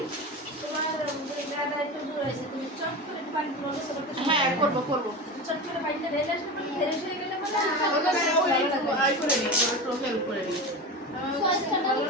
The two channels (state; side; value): normal; both; correlation 0.26